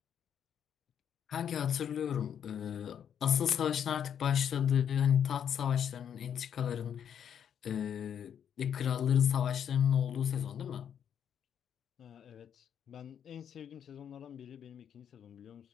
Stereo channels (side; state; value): right; quieter; 8.7 dB